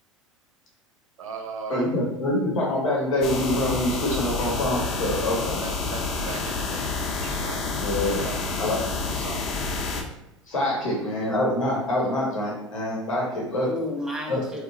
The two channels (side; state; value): both; normal; correlation 0.31